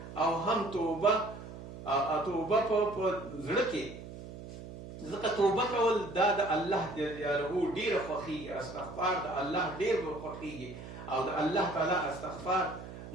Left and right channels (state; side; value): noise; right; hum, 12 dB below the sound